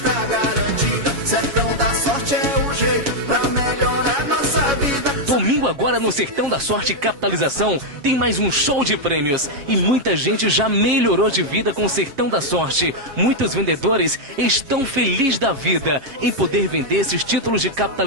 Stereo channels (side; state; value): left; late; 7.2 ms